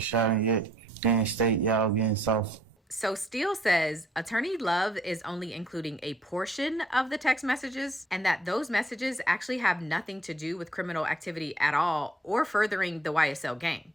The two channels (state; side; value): normal; both; correlation 0.64